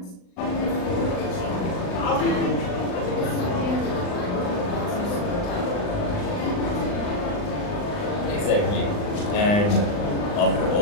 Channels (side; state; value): right; late; 39 ms